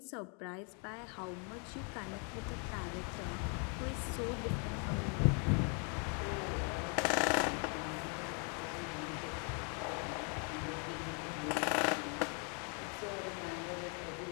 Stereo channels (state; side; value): quieter; right; 38.3 dB